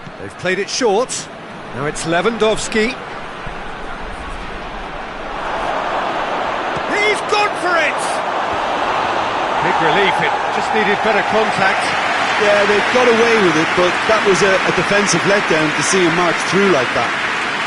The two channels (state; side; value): identical; both; correlation 1.00